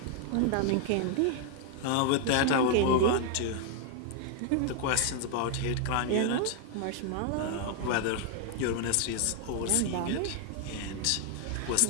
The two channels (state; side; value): different; both; correlation 0.00